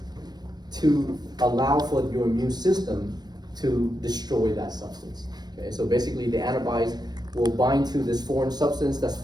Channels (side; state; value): left; late; 0.19 ms